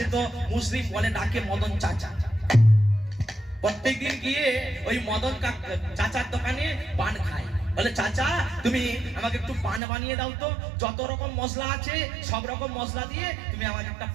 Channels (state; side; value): drops out; left; at 9.8 s